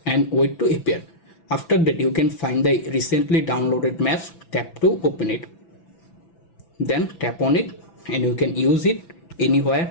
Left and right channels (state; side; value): late; right; 6.0 ms